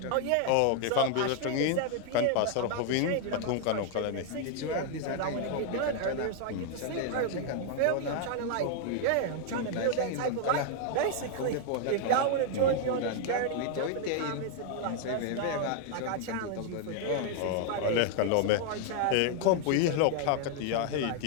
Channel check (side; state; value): both; different; correlation 0.00